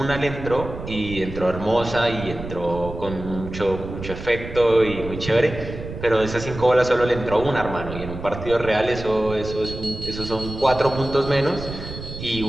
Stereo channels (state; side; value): noise; right; rumble, 10 dB below the sound